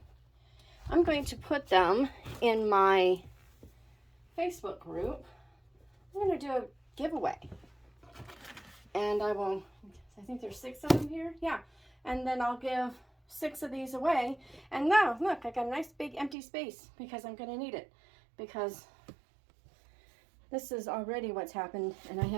I'm going to put them in my Facebook group. I'm going to do a giveaway. And I think there's 6 of them here. Yeah. And then I'll give 6 of these away. And now, look, I got a nice big empty space because I'm going to need it. Because this is already what's happened, and I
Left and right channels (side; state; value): left; drops out; at 16.4 s